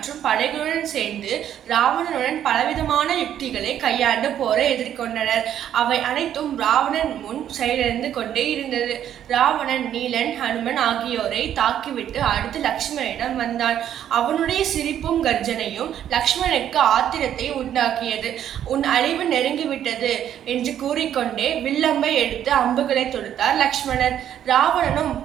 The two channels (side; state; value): left; quieter; 10.4 dB